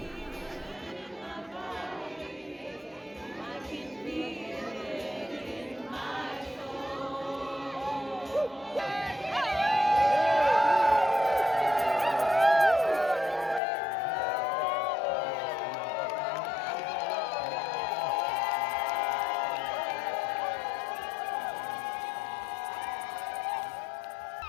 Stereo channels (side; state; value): right; drops out; at 13.6 s